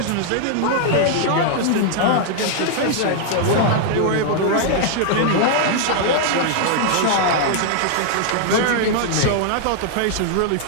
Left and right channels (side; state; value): both; different; correlation 0.00